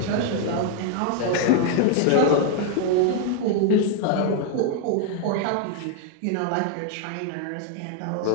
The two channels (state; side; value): different; both; correlation 0.00